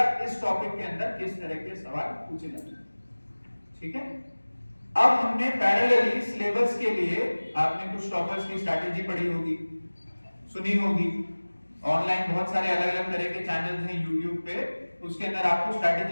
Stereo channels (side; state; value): both; inverted; correlation -1.00